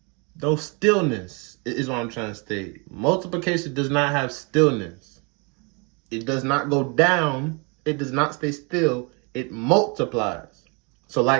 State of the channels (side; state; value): left; quieter; 32.5 dB